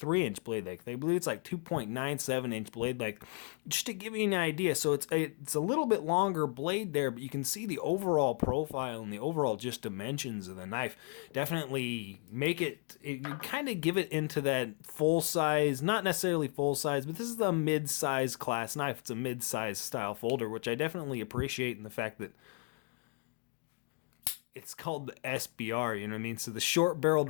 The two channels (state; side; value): quieter; right; 37.5 dB